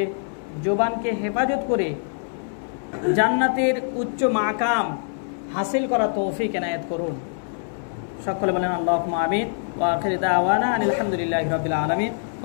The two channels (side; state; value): right; silent; 63 dB below the other